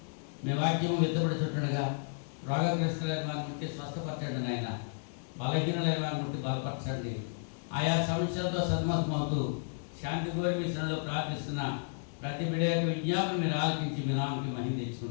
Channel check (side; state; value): right; silent; digital silence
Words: మీ వాక్యము విత్తబడుతుండగా రోగగ్రస్తులైన వారిని ముట్టి స్వస్థపరచండి నాయన. బలహీనులైన వారిని ముట్టి బలపరచండి. ఆయా సమస్యలతో సతమతమవుతూ శాంతి కోరి మీ శ్రమలో ప్రార్థిస్తున్న ప్రతి బిడ్డ యొక్క విజ్ఞాపన మీరు ఆలకించి మీ నామకి మహిమ